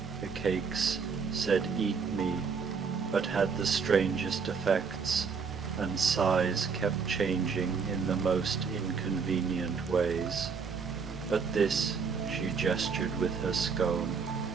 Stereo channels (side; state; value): left; quieter; 5.6 dB